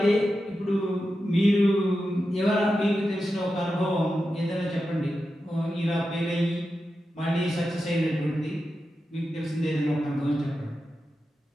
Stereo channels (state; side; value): normal; both; correlation 0.90